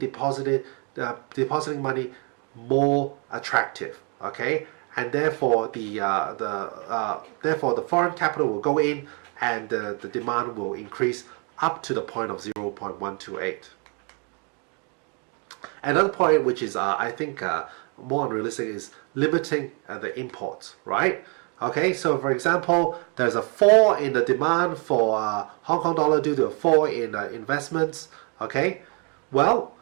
money more attractive, okay, and therefore the foreign capital will go in, and the demand will increase up to the point of 0.128. Another point, which is I think more unrealistic, is limiting the imports, right? Okay, so for example, there's a fall in the demand for Hong Kong dollar due to a fall in investments. Okay, well,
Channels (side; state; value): left; quieter; 36.0 dB